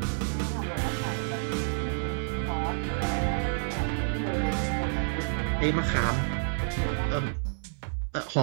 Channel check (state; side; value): silent; left; 58 dB below the other